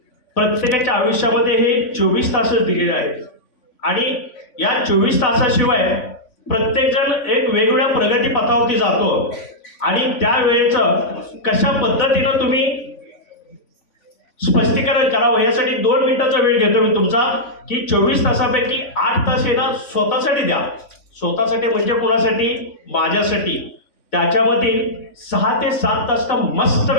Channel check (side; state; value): right; late; 3.5 ms